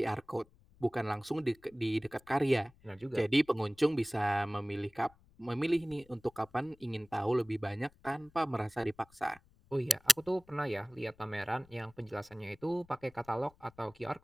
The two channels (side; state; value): left; noise; rumble, 28 dB below the sound